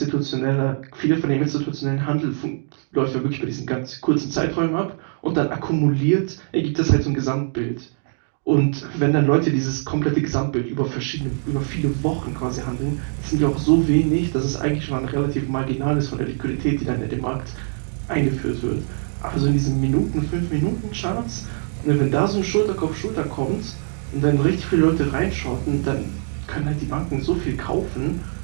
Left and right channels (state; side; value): silent; left; digital silence